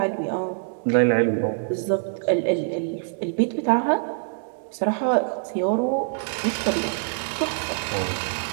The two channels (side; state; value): left; silent; digital silence